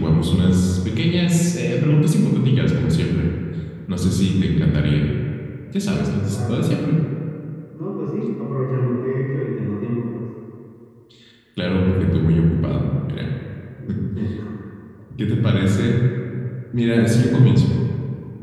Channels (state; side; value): identical; both; correlation 1.00